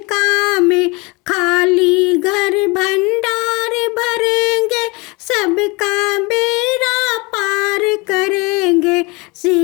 काम, खाली घर भंडार भरेंगे, सबका बेड़ा पार करेंगे।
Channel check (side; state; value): right; quieter; 26.9 dB